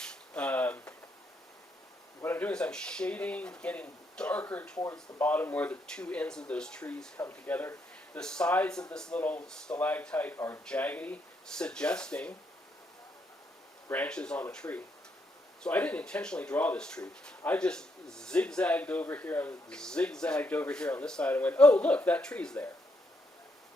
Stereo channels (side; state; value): both; normal; correlation 0.77